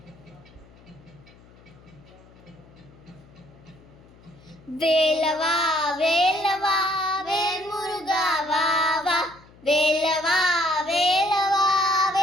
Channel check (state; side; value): noise; left; hum, 25 dB below the sound